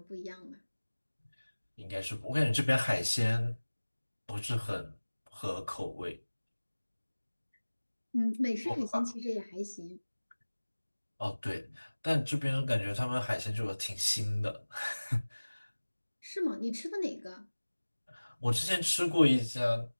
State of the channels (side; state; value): both; inverted; correlation -1.00